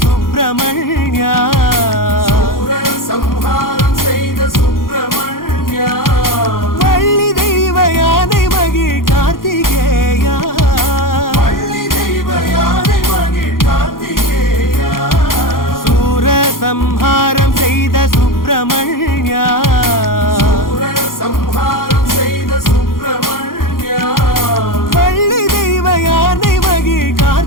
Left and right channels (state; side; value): late; right; 0.91 ms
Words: சுப்பிரமணியா சூர சம்ஹாரம் செய்த சுப்பிரமணியா வள்ளி தெய்வ யானை மகிழ் கார்த்திகேயா பள்ளி தெய்வ யானை மகிழ் கார்த்திகேயா சூர சம்ஹாரம் செய்த சுப்பிரமணியா சூர சம்ஹாரம் செய்த சுப்பிரமணியா வள்ளி தெய்வ யானை மகிழ்